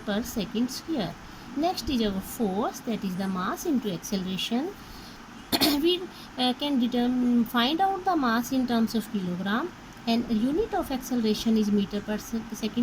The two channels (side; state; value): both; identical; correlation 1.00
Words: per second square. Next is our force, that is the mass into acceleration. We can find out the mass in terms of kilogram, and unit of acceleration is meter per